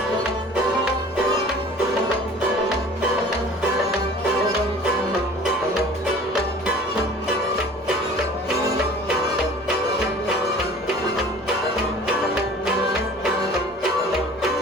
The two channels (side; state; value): both; normal; correlation 0.46